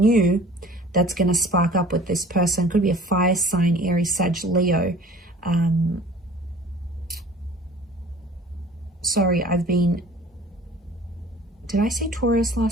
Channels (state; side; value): normal; both; correlation 0.47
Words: that's going to spark up with this person. Could be a fire sign, Aries, Sag, Leo. Sorry, did I say Taurus